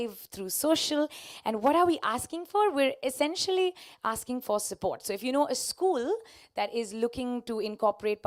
through social. And what are we asking for? We're essentially asking for support. So if you know a school that is looking to incorporate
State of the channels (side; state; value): both; identical; correlation 1.00